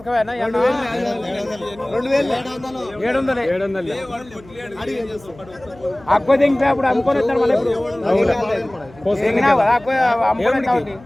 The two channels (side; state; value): left; noise; hum, 23 dB below the sound